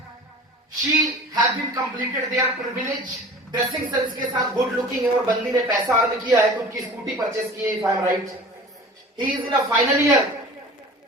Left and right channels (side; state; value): both; normal; correlation 0.41